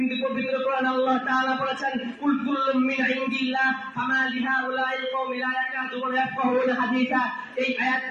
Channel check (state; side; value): identical; both; correlation 1.00